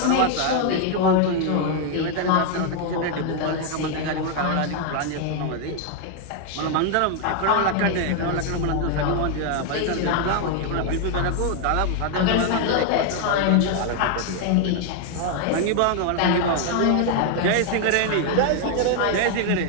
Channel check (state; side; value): different; both; correlation 0.00